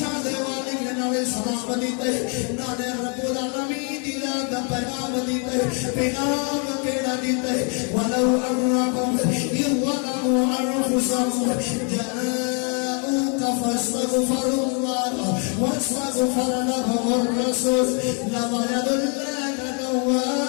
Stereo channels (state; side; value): quieter; right; 37.8 dB